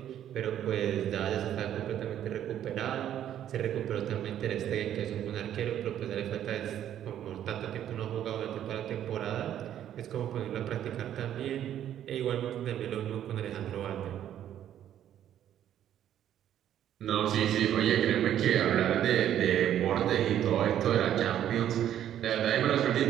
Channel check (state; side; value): quieter; left; 10.8 dB